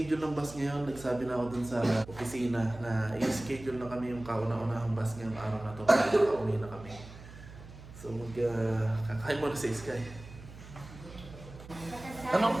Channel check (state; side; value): noise; right; hum, 16 dB below the sound